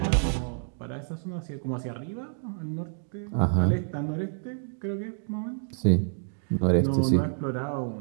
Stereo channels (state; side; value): silent; left; 59 dB below the other